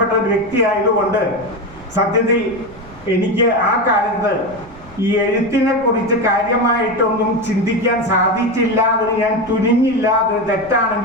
ഒരു വ്യക്തിയായതുകൊണ്ട് സത്യത്തിൽ എനിക്ക് ആ കാലത്ത് ഈ എഴുത്തിനെ കുറിച്ച് കാര്യമായിട്ടൊന്നും ചിന്തിക്കാൻ സാധിച്ചില്ല. അതിന് ഞാൻ തുനിഞ്ഞില്ല. അത്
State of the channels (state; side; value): noise; right; rumble, 22 dB below the sound